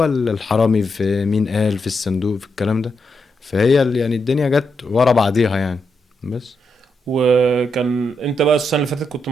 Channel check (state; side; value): normal; both; correlation 0.82